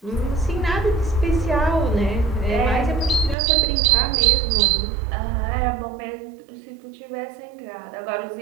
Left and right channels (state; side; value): drops out; left; at 3.4 s